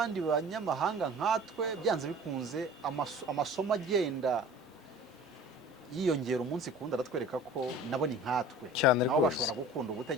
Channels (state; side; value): normal; both; correlation 0.43